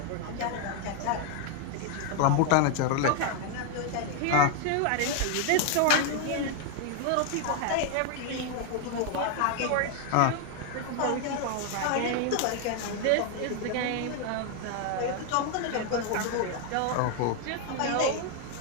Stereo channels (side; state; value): both; different; correlation 0.00